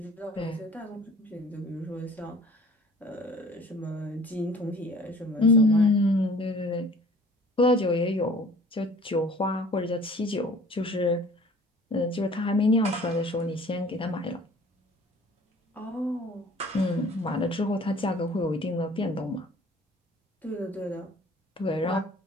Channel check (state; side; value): normal; both; correlation 0.50